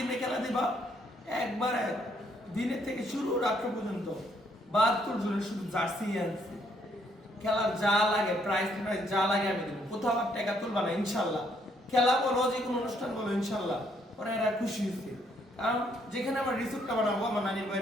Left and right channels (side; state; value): both; normal; correlation 0.70